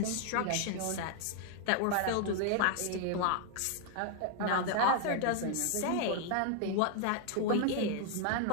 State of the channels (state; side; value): different; both; correlation 0.00